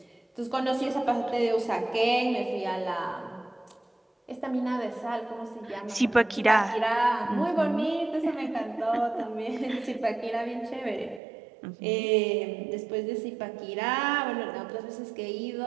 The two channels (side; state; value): left; drops out; at 11.2 s